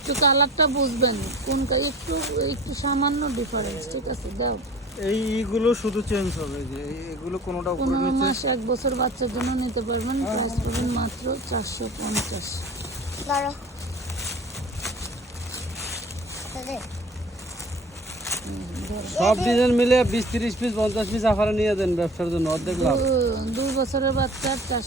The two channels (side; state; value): both; normal; correlation 0.43